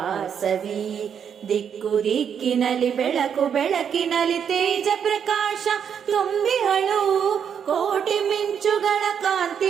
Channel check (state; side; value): quieter; left; 7.8 dB